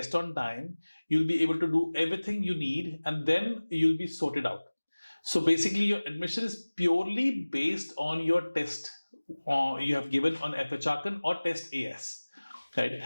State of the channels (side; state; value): both; inverted; correlation -1.00